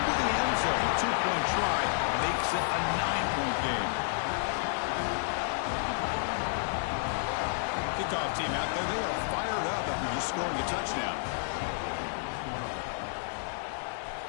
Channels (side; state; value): right; silent; digital silence